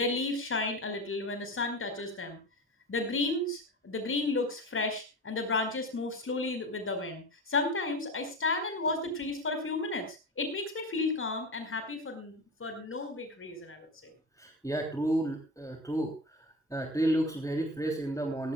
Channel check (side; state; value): both; normal; correlation 0.27